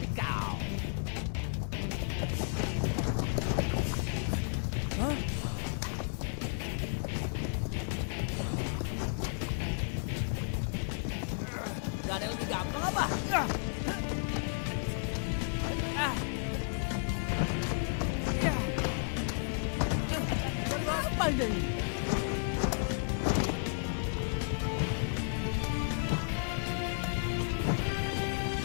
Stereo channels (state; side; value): silent; right; digital silence